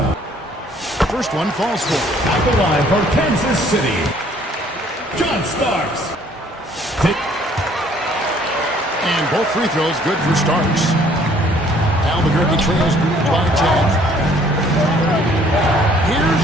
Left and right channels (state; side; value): normal; both; correlation 0.60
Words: First one falls for. At the line for Kansas City. John Starks. And both free throws good for Starks. Albuquerque trails by 10. Here's